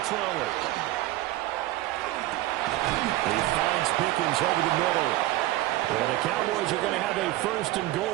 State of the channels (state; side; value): quieter; left; 16.4 dB